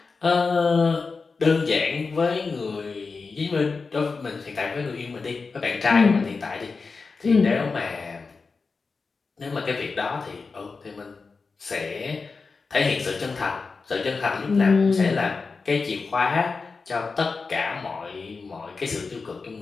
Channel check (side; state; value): right; quieter; 4.5 dB